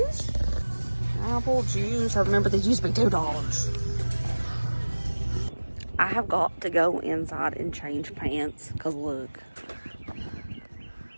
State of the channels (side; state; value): both; inverted; correlation -1.00